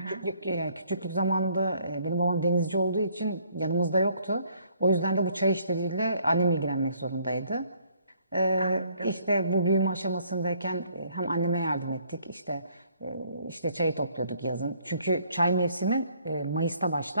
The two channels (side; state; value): both; inverted; correlation -0.63